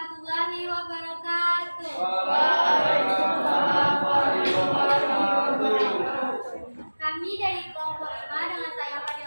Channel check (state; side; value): inverted; both; correlation -1.00